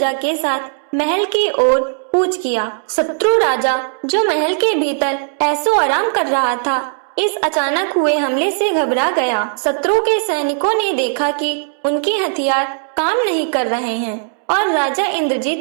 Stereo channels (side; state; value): left; silent; 68 dB below the other